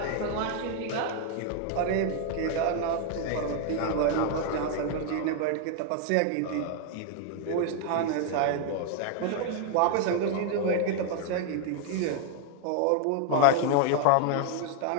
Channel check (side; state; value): both; different; correlation 0.00